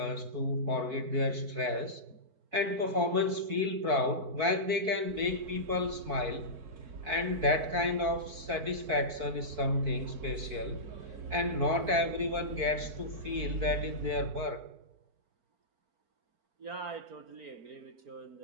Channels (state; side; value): late; left; 4.5 ms